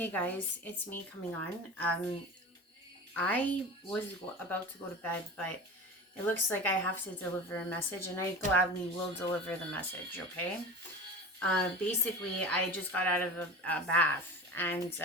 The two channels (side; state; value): both; normal; correlation 0.33